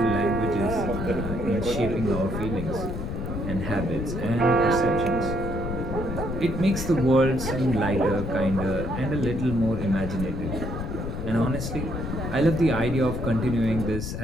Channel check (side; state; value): left; noise; rumble, 4 dB below the sound